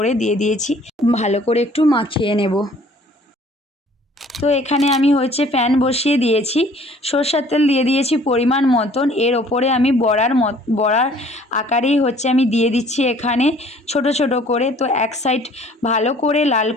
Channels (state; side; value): normal; both; correlation 0.55